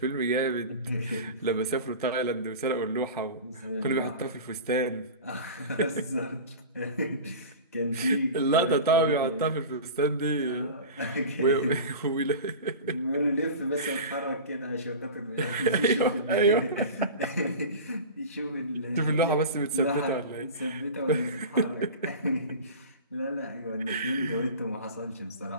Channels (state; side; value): inverted; both; correlation -0.32